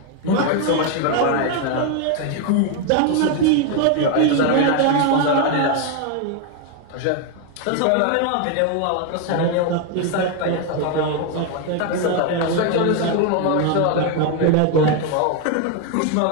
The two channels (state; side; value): different; both; correlation 0.01